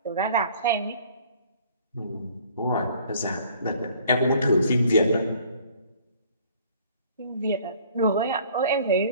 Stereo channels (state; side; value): inverted; both; correlation -0.55